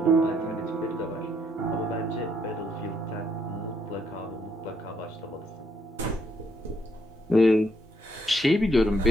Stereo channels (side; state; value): both; normal; correlation 0.72